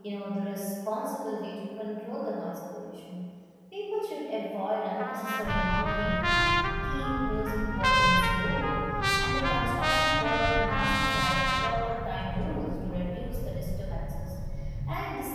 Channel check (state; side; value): identical; both; correlation 1.00